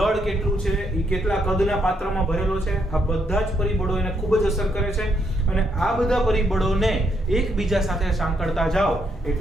કેટલું છે, એ કેટલા કદના પાત્રમાં ભરેલો છે. આ બધા જ પરિબળો એને ખૂબ જ અસર કરે છે, અને આ બધા પરિબળોને એકબીજા સાથે સાંકળતા જાઓ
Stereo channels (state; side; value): normal; both; correlation 0.76